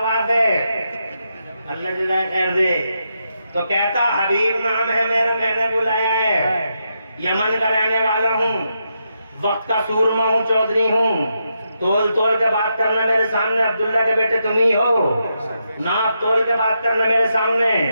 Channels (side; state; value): both; inverted; correlation -0.83